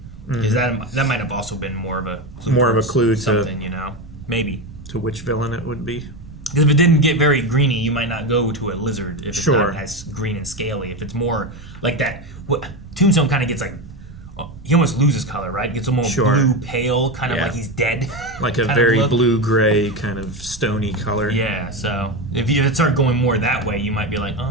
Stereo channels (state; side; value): normal; both; correlation 0.17